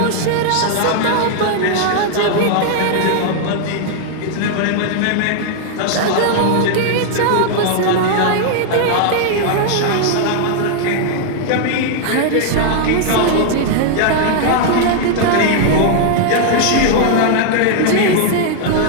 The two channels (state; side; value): different; both; correlation 0.00